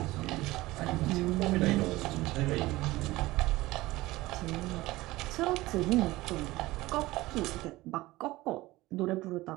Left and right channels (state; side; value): quieter; left; 18.8 dB